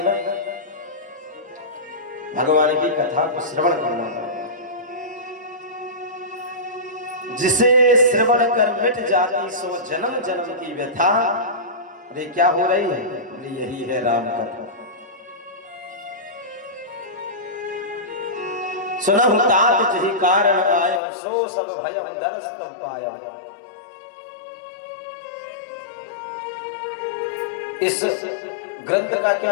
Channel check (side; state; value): right; drops out; at 21.0 s